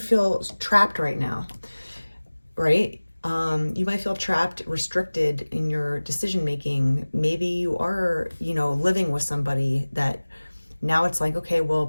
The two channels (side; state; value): both; inverted; correlation -1.00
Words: feel trapped right now, right? You might feel trapped, restricted in your decision making. Maybe you are, you know, living with somebody that now it's like, okay, well,